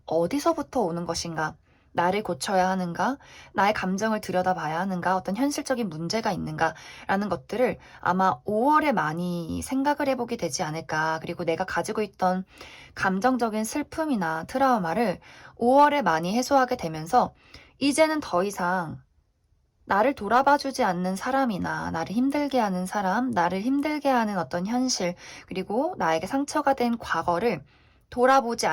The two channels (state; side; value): identical; both; correlation 1.00